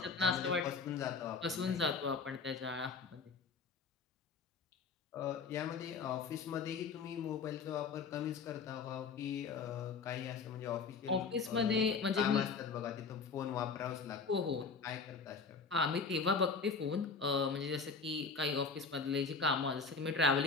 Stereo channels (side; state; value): right; quieter; 4.9 dB